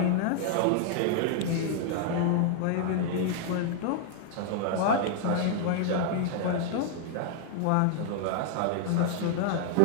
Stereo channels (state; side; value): different; both; correlation 0.00